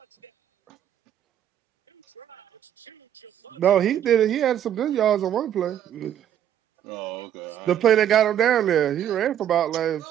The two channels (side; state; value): left; quieter; 10.5 dB